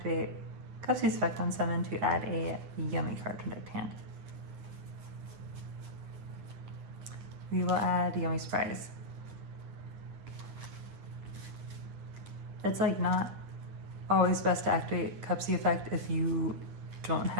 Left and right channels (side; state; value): left; late; 9.5 ms